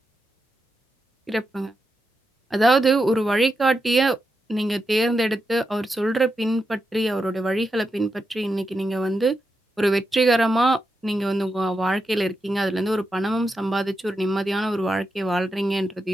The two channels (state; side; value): normal; both; correlation 0.86